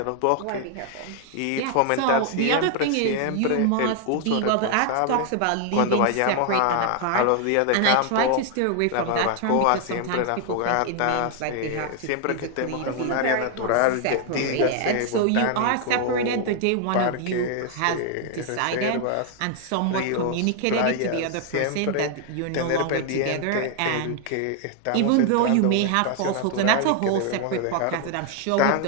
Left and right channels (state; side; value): different; both; correlation 0.00